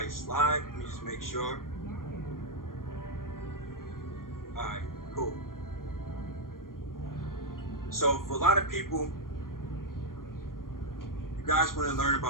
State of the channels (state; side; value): late; right; 0.91 ms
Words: slide. Let me just make sure. All right, cool. So for a lot of people, you guys want to learn